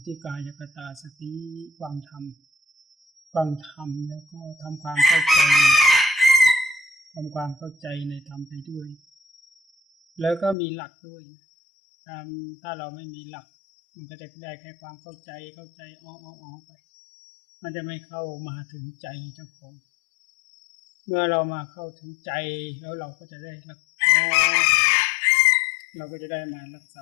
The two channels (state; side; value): drops out; right; at 10.6 s